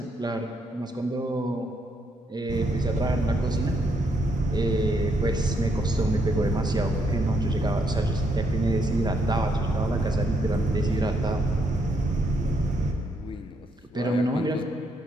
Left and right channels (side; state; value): both; normal; correlation 0.75